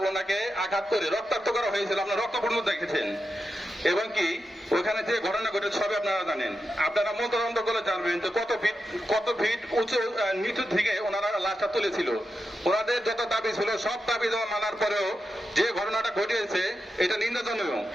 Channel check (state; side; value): normal; both; correlation 0.88